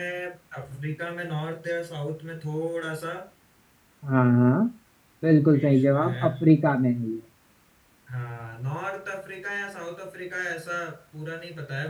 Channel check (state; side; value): identical; both; correlation 1.00